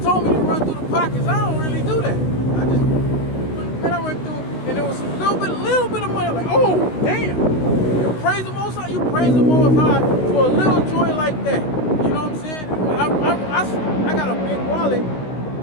told me to run through the pockets. I don't really do that. I went through, and there was a little bit of money. Like, oh, damn! You praise the Most High. You praise the Most High for a little joy like that. You know what I'm saying? I got a big wallet,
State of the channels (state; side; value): late; right; 16 ms